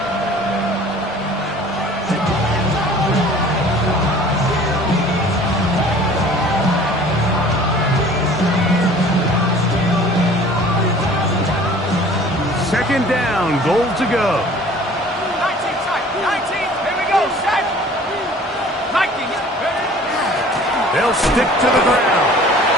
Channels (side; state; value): both; normal; correlation 0.48